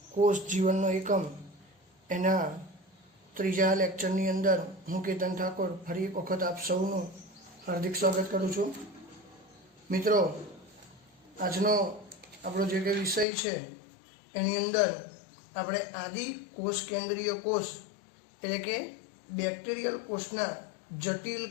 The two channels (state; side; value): drops out; right; at 13.2 s